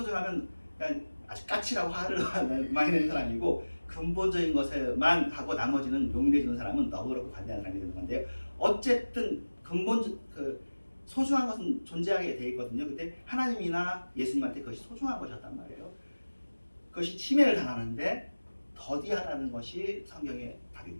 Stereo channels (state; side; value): inverted; both; correlation -1.00